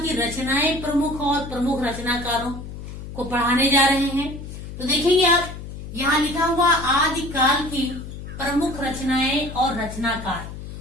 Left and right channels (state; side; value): noise; left; hum, 10 dB below the sound